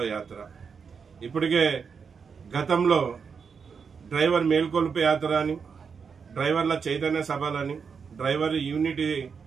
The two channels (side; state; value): left; quieter; 6.0 dB